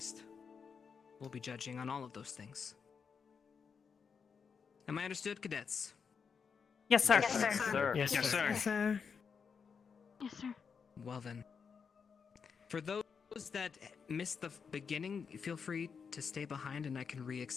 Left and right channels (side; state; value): right; quieter; 6.1 dB